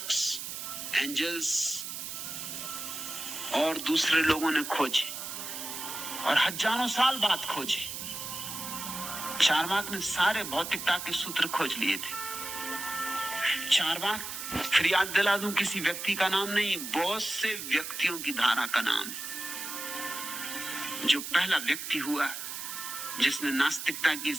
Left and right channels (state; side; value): noise; right; hiss, 7 dB below the sound